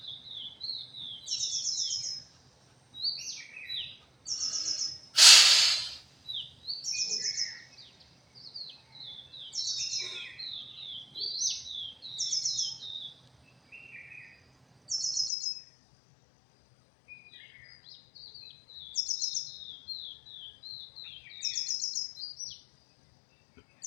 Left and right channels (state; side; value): drops out; right; at 15.3 s